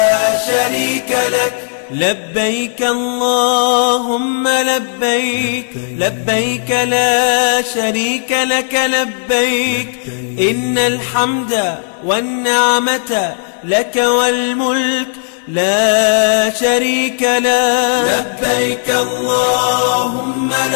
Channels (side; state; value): right; silent; digital silence